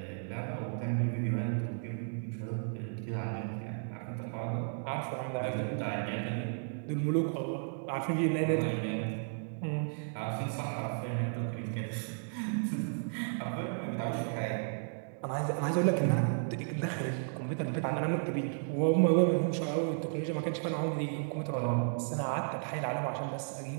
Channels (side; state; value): left; silent; digital silence